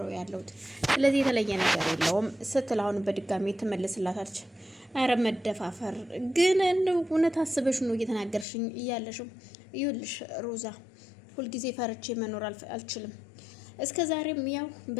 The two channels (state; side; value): drops out; right; at 8.5 s